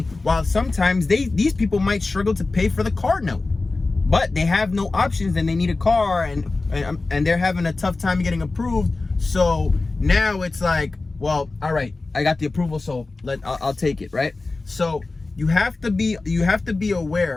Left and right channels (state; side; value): quieter; right; 3.5 dB